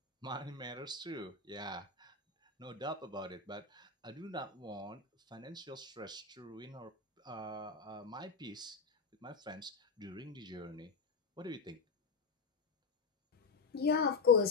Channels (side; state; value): right; quieter; 4.7 dB